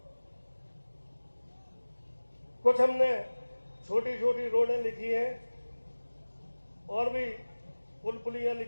कुछ हमने छोटी छोटी रोडें लिखी हैं और भी पुल पुलियां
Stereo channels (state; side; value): inverted; both; correlation -1.00